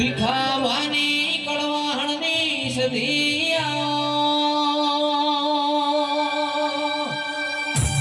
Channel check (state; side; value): identical; both; correlation 1.00